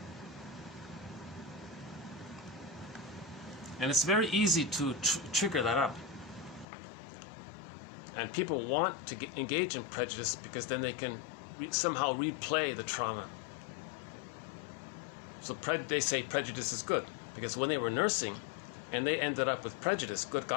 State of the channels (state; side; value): drops out; right; at 6.7 s